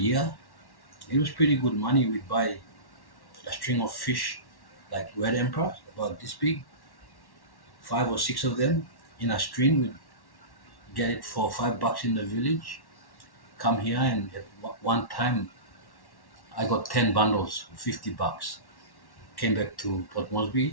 It was pretty good money. We'd buy a string of fish, like red emperor, about this big, 5 or 6 of them in a string. We'd get it for $5 in the village. Come here, and at one time I got 10 bundles for $50. Came back to Port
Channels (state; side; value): late; right; 1.1 ms